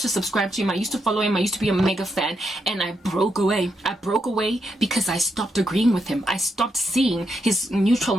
to subscribe to him, I used to follow him, I used to be a mega fan, and I broke away. I broke away because I stopped agreeing with him. I stopped seeing his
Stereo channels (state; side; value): normal; both; correlation 0.81